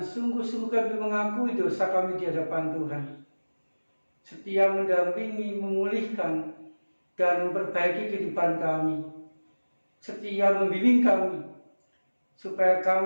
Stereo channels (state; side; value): inverted; both; correlation -1.00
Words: kami mengakui dosa kami di hadapan Tuhan, setia mendampingi, memulihkan, dan memperbaiki kehidupan kami, setia membimbing kami, supaya